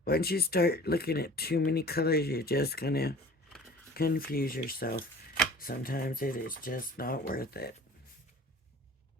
Once you start looking at too many colors, you're just gonna confuse yourself. Sometimes it is just not worth it.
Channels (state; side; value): normal; both; correlation 0.45